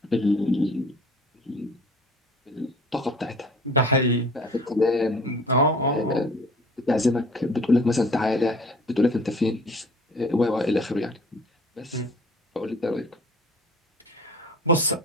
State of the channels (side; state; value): both; normal; correlation 0.49